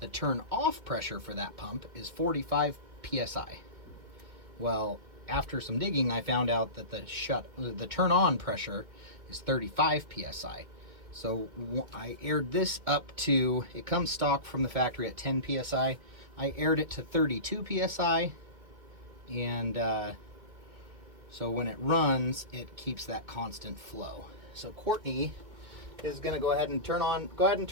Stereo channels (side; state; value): left; late; 2.1 ms